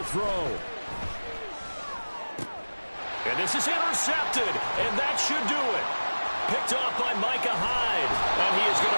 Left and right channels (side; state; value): both; inverted; correlation -1.00